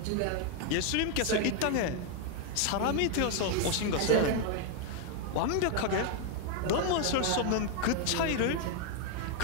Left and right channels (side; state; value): both; different; correlation 0.01